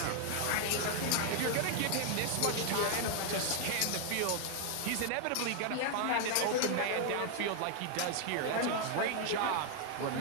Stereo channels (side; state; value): both; different; correlation 0.00